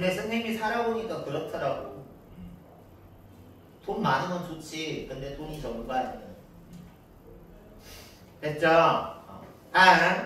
선생님이 살아보니까 그렇더라고. 돈 많은 건 좋지. 근데 돈이 전부가 아니야. 됐죠?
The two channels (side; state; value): both; identical; correlation 1.00